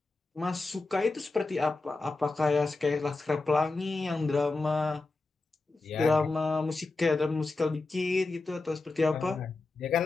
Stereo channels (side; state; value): right; quieter; 3.4 dB